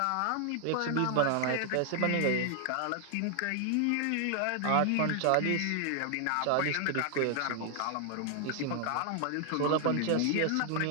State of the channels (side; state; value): both; different; correlation 0.00